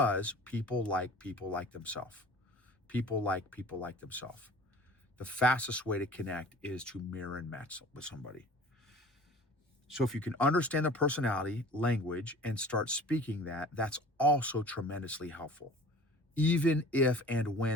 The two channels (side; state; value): both; normal; correlation 0.44